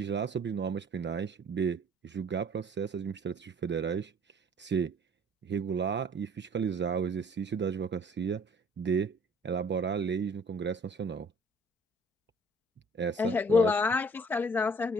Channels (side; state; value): both; normal; correlation 0.54